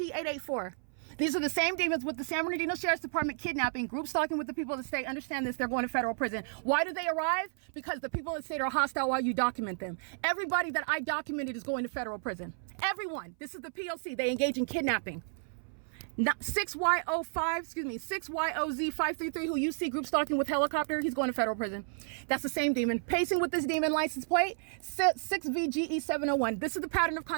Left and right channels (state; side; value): silent; left; 56 dB below the other